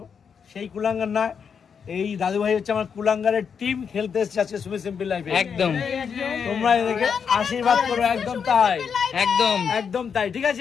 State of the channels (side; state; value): right; quieter; 6.7 dB